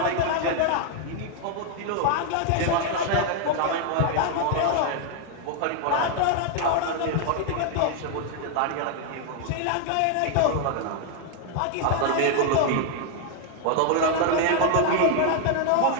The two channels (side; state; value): both; different; correlation 0.00